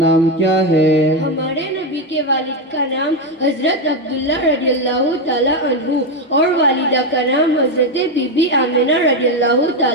کیا ہے؟ ہمارے نبی کے والد کا نام حضرت عبداللہ رضی اللہ تعالیٰ عنہ اور والدہ کا نام حضرت بی بی آمنہ رضی اللہ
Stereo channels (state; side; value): normal; both; correlation 0.09